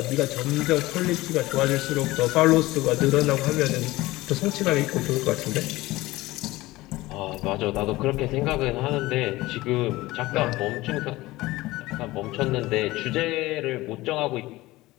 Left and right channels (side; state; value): right; quieter; 18.9 dB